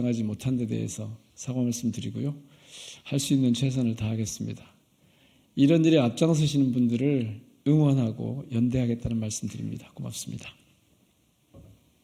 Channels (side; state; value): both; identical; correlation 1.00